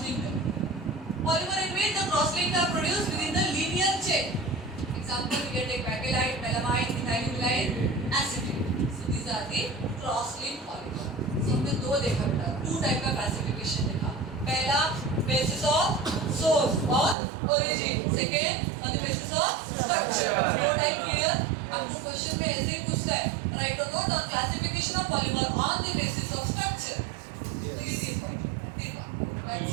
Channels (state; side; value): drops out; left; at 17.2 s